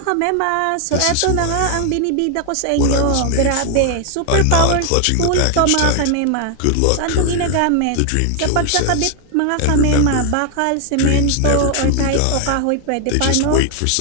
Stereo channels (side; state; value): both; different; correlation 0.00